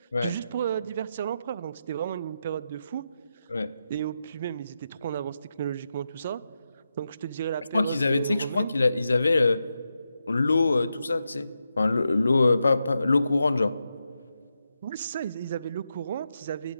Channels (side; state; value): both; inverted; correlation -0.87